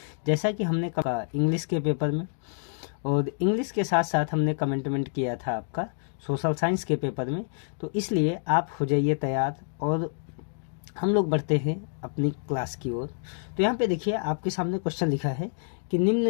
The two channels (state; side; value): silent; right; digital silence